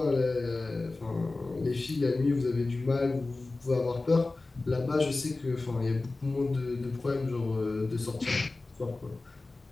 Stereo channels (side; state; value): right; quieter; 3.3 dB